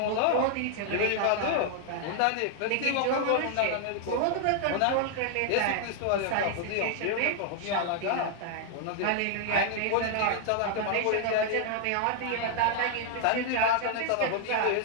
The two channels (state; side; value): different; both; correlation 0.00